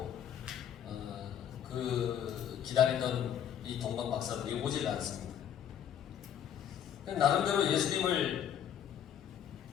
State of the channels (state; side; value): quieter; right; 9.4 dB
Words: 그 기다리던 이 동방박사들이 오질 않습니다. 나름대로 예수님을